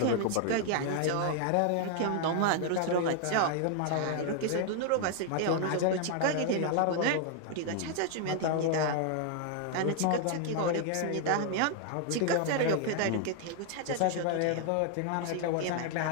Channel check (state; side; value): different; both; correlation 0.00